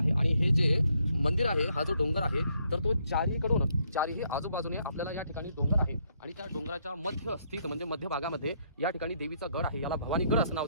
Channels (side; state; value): both; inverted; correlation -0.72